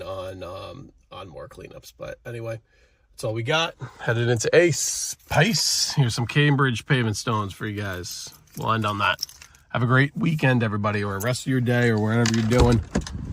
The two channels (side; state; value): both; identical; correlation 1.00